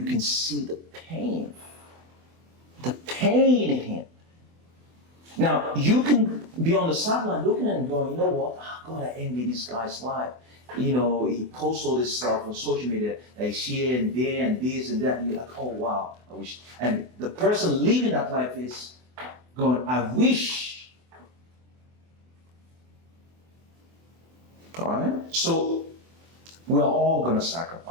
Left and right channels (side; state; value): left; late; 24 ms